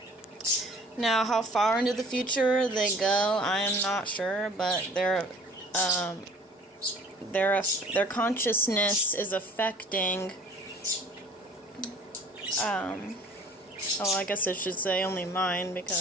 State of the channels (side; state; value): both; normal; correlation 0.50